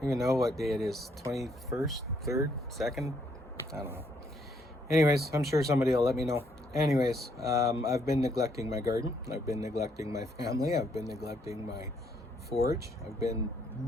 don't even know what day it is. 21st, 3rd, 2nd? I don't know. Anyways, I'm sure somebody will let me know. Anyways, I've been neglecting my garden. I've been neglecting my family. I've been neglecting my forage. I've been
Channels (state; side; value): normal; both; correlation 0.71